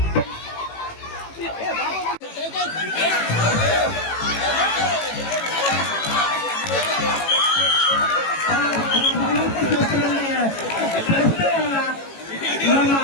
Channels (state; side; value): late; right; 18 ms